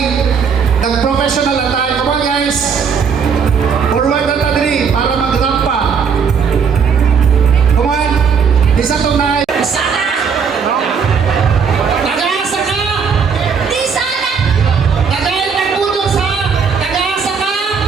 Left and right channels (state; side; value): quieter; left; 6.2 dB